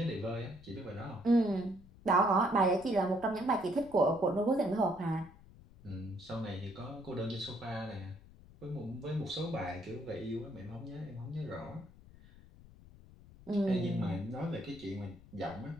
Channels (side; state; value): left; noise; rumble, 21 dB below the sound